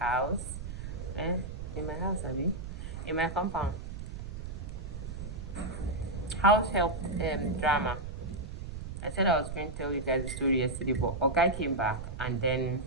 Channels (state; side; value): noise; right; rumble, 8 dB below the sound